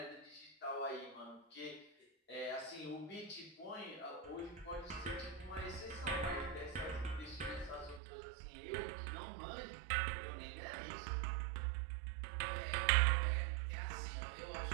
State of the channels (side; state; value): left; drops out; at 8.0 s